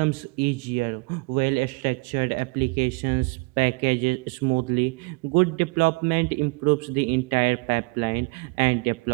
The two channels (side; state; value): left; quieter; 28.2 dB